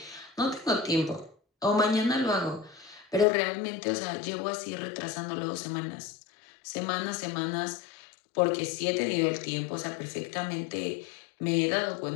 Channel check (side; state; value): right; drops out; at 3.2 s